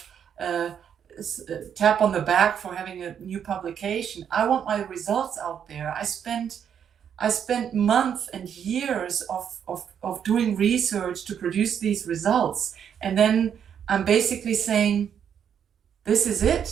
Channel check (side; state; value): left; quieter; 8.3 dB